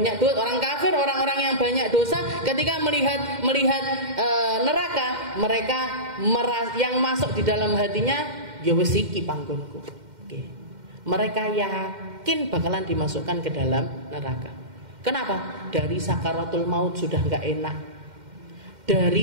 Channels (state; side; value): late; left; 2.1 ms